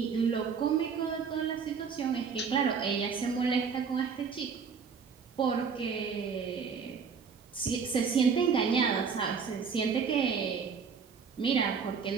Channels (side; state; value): left; quieter; 6.0 dB